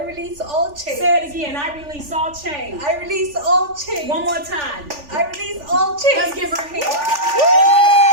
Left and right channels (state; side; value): late; left; 3.4 ms